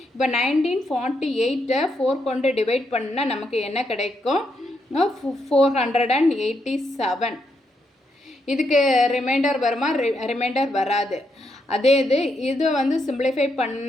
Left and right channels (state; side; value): normal; both; correlation 0.79